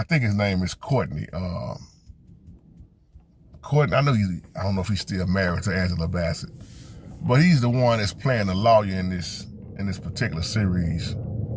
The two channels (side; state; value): both; identical; correlation 1.00